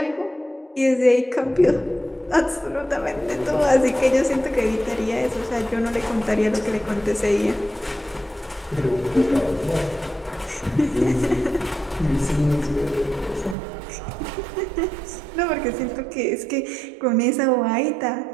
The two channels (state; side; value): drops out; left; at 13.6 s